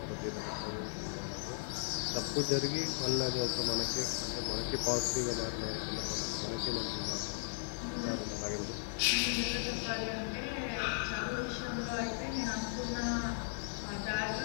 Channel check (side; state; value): right; silent; digital silence